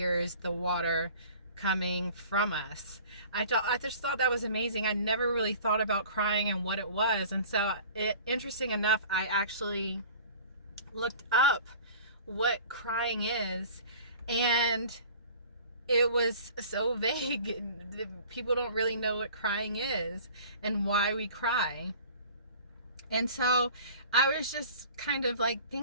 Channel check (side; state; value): both; inverted; correlation -0.45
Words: the water coming from us. I just thought that was amazing. I never really thought about crying and what it was. And so interesting enough, I actually looked up what crying is, and it was so vague. People don't really know what crying is and why we cry. And so I was just kind of like